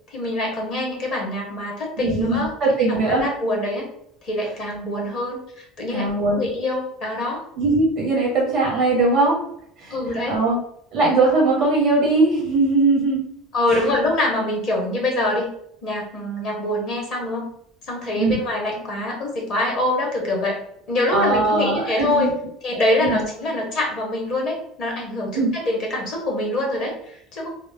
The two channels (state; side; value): normal; both; correlation 0.34